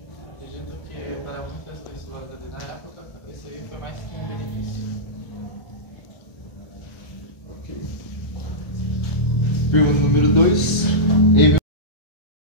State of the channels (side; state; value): right; late; 1.3 ms